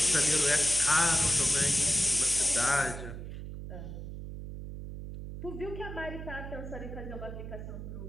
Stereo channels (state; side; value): noise; right; hum, 9 dB below the sound